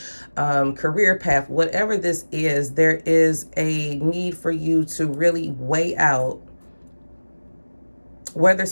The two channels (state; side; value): inverted; both; correlation -1.00